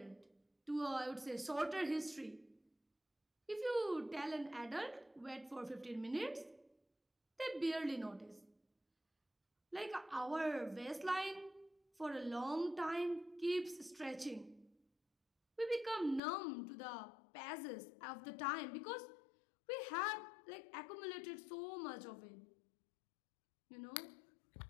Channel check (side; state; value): right; drops out; at 16.2 s